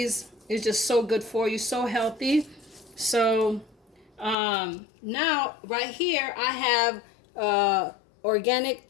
It's just so good for you, so healthy. So now right here I have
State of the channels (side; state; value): right; drops out; at 4.4 s